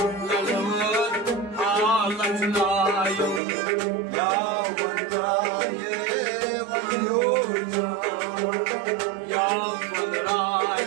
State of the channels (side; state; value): left; drops out; at 3.4 s